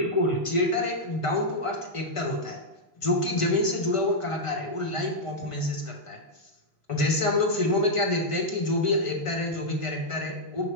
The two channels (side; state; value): right; late; 1.5 ms